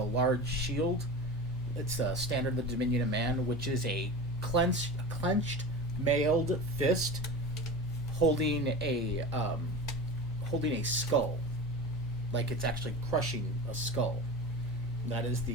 large shield. It's a standard of the Dominion of Man, which is a clenched mailed fist holding a skull, like it's actually crushing a skull. That is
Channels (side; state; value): both; normal; correlation 0.30